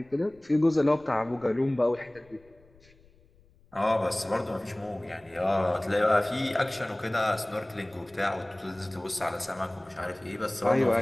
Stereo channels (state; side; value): noise; left; rumble, 29 dB below the sound